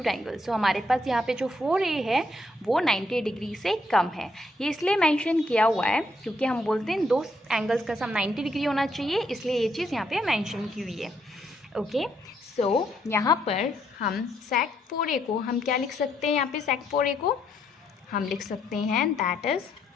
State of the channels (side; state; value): both; normal; correlation 0.74